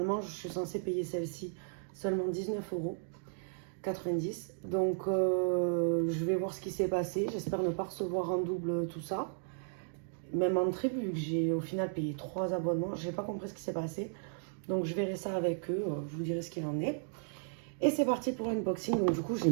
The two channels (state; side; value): silent; left; digital silence